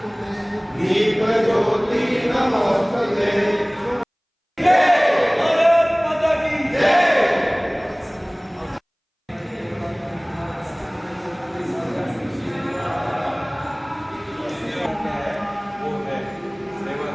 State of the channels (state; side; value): identical; both; correlation 1.00